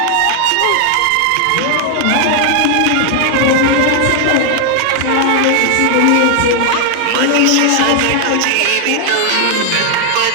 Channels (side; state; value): both; different; correlation 0.00